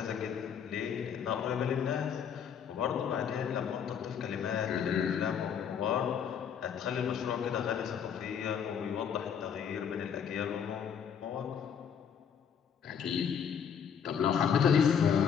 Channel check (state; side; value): quieter; right; 7.7 dB